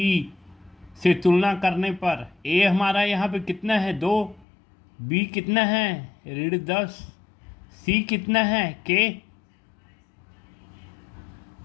से तुलना करने पर a हमारा यहाँ पे कितना है 2, b कितना है ऋण 10, c कितना है k।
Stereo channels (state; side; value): drops out; right; at 4.5 s